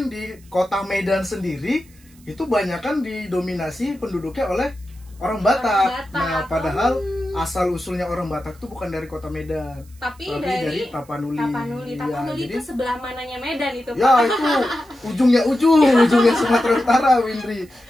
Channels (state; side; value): noise; right; hiss, 28 dB below the sound